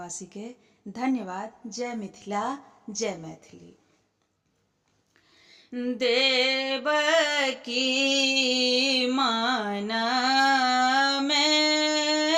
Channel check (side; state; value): both; identical; correlation 1.00